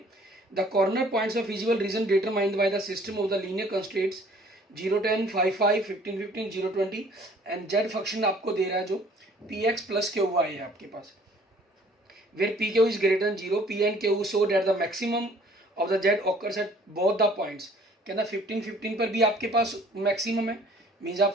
The corner points of feasible region determined by the system of the linear constraints 0, 10, 5, 5, 15, 15, 0, 20 and Z function आपको दे रहा है जो P X plus Q Y है आपके पास, where P Q is greater than 0, P and Q so that the maximum of the Z occurs at both the points. कहना 15, 15 पर भी आपके पास मैक्सिमम है, मीन्स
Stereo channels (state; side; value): normal; both; correlation 0.55